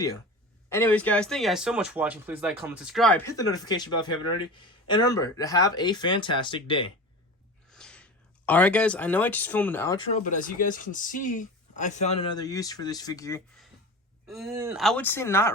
Anyways, guys, thank you guys so much for watching. Please like, comment, subscribe, hit the notification bell if you haven't already, and remember to have a fantastic day. Alright, guys, I know I just filmed an outro, but as you guys can see, I found another use for this figure. I would say not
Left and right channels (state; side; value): normal; both; correlation 0.32